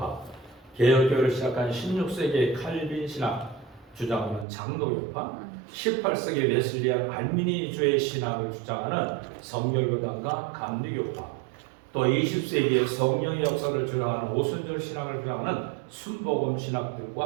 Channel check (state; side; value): drops out; left; at 4.5 s